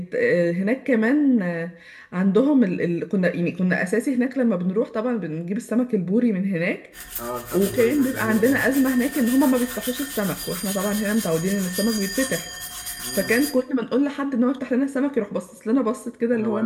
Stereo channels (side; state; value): both; identical; correlation 1.00